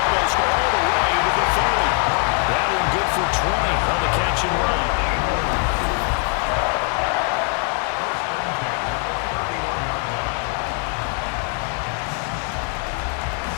almost all the way to the 30. That one good for 20 on the catch and run.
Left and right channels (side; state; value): right; quieter; 36.2 dB